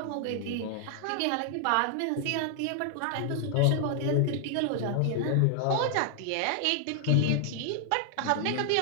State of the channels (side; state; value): both; different; correlation 0.00